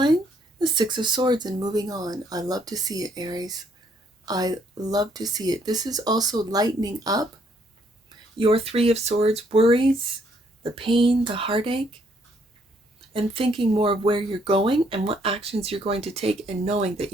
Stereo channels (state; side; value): normal; both; correlation 0.69